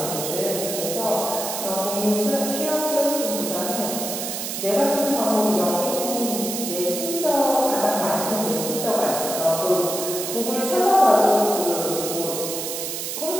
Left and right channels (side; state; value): right; noise; hiss, 4 dB below the sound